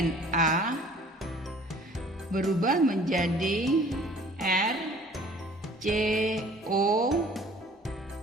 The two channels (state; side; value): normal; both; correlation 0.52